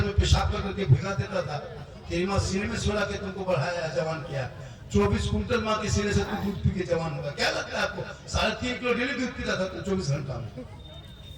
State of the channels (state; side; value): identical; both; correlation 1.00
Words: में पेशाब करके भिगा देता था, तेरी माँ सीने में सुला के तुमको बढ़ाया, जवान किया। 24 कुंटल माँ के सीने से तुम दूध पी के जवान होगा। क्या लगता है आपको? 3.5 किलो डेली दूध पीता था तुम 24 घंटा में,